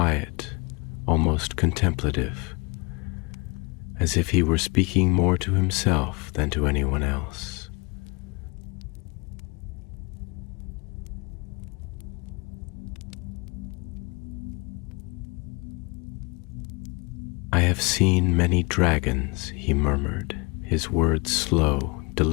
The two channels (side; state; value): right; quieter; 28.6 dB